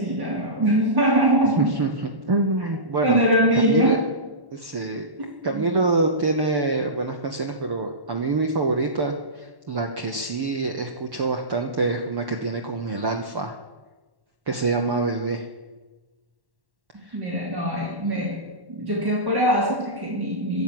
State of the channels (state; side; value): late; left; 1.1 ms